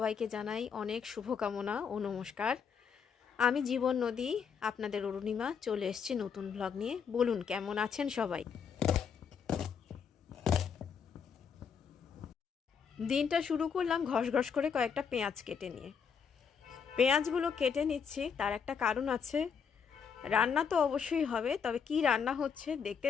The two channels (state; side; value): quieter; right; 6.7 dB